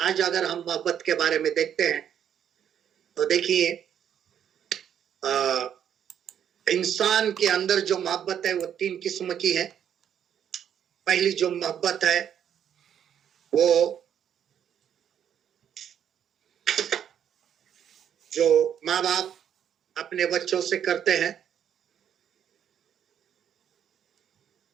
अगर हम मोहब्बत के बारे में देखते हैं तो देखिए इंसान के अंदर जो मोहब्बत है वो 3 किस्म की है। पहली जो मोहब्बत है वो जो माँ बाप अपने बच्चों से करते हैं,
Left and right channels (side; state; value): left; quieter; 9.1 dB